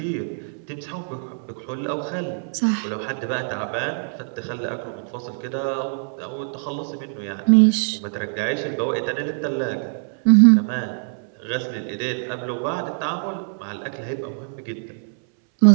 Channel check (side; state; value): left; silent; 63 dB below the other